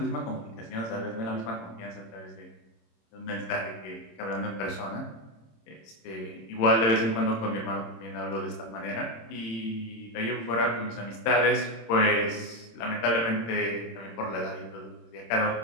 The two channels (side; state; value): right; late; 26 ms